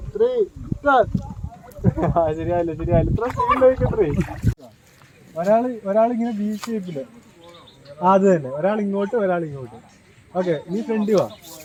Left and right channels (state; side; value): identical; both; correlation 1.00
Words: 3 സ്റ്റാർട്ട്. ശരിയായില്ല ഇത്ര സ്പീഡിലേക്കത്രേ. ഒരാളിങ്ങനെ ബി ഷേപ്പില്, അത് തന്നെ, ഒരാൾ ഇങ്ങോട്ട് ഒരാൾ ഇങ്ങോട്ട്. ഓക്കെ, നീ ഫ്രണ്ട് വാ